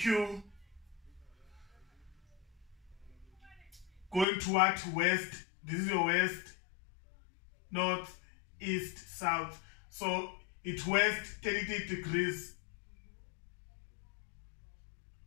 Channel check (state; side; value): drops out; right; at 4.2 s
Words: going toward west. This is your west, north, east, south. So it's west 30 degrees.